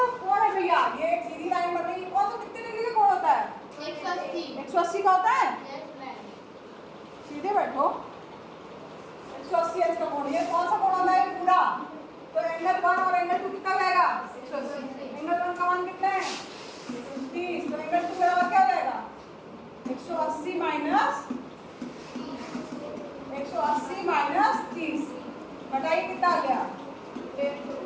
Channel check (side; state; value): both; identical; correlation 1.00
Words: कोण है भैया? ये एक सीधी लाइन बन रही है, कौन सा कितने डिग्री का कोण होता है? 180 का होता है। सीधे बैठो, 180 इसका कोण। ये कौन सा कोण होता है? पूरा। तो एंगल 1 और एंगल 2 कितना जाएगा? 180। एंगल 1 का मान कितना है? 30। तो एंगल 2 बराबर क्या हो जाएगा? 180 माइनस 30। बताइए कितना आ गया?